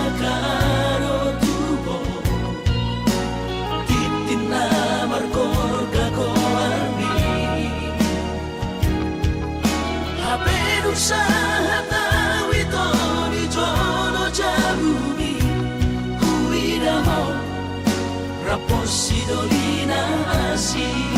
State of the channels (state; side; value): identical; both; correlation 1.00